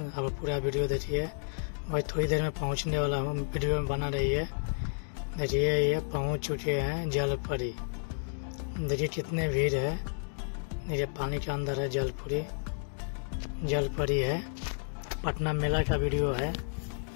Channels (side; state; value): right; silent; digital silence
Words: अब पूरा वीडियो देखिए, मैं थोड़ी देर में पहुंचने वाला हूं। वीडियो में बना रही है। देखिए ये पहुंच चुके हैं जल परी। देखिए कितने भीड़ है। देखिए पानी के अंदर है जल परी है। पटना मेला का वीडियो है।